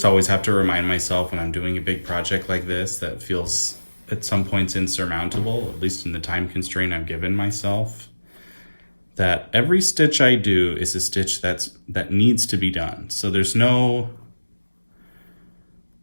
always have to remind myself when I'm doing a big project like this that feels at some points insurmountable, at least in the time constraint I've given myself, that every stitch I do is a stitch that needs to be done. So there's no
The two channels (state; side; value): inverted; both; correlation -1.00